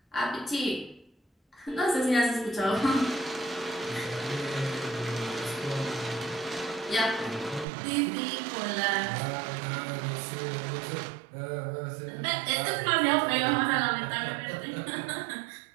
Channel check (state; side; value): drops out; left; at 7.7 s